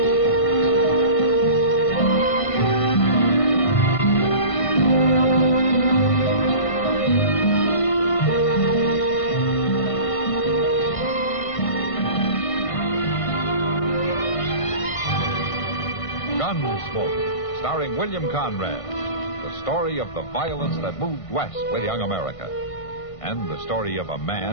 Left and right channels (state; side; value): late; right; 1.5 ms